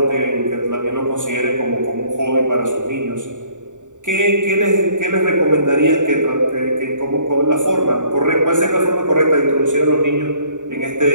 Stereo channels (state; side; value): late; left; 0.86 ms